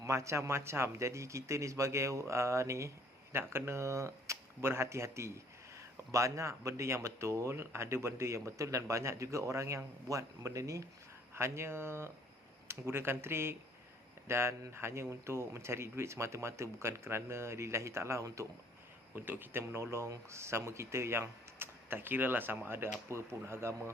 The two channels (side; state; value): both; normal; correlation 0.59